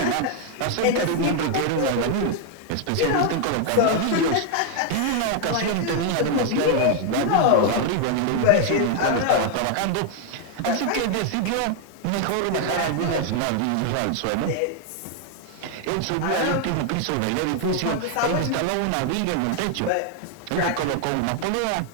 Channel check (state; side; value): different; both; correlation 0.00